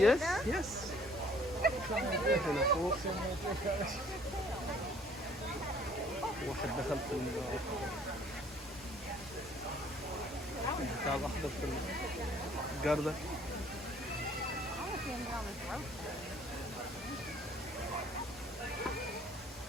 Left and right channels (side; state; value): both; normal; correlation 0.57